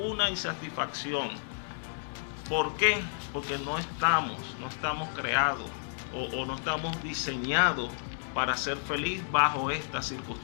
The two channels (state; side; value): silent; right; digital silence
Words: insatisfacción. ¿Por qué? Porque no estamos creados o no estamos diseñados para ser feliz bajo estas